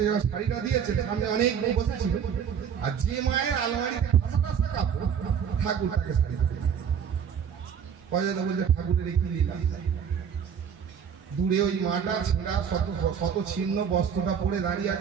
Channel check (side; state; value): left; quieter; 7.6 dB